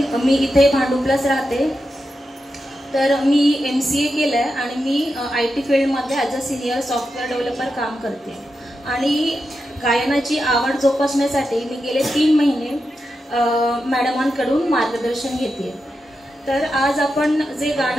मी इथे भांडुपलाच राहते. तर मी MCA केलं आहे आणि मी IT फील्डमध्ये as a senior software developer काम करते. आणि गायनाची आवड जोपासण्यासाठी मी गेले 3 महिने मॅडमांकडून मार्गदर्शन घेते. तर आज आपण जे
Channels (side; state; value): both; normal; correlation 0.88